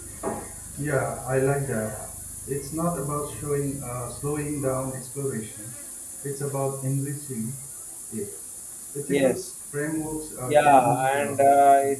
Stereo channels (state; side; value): identical; both; correlation 1.00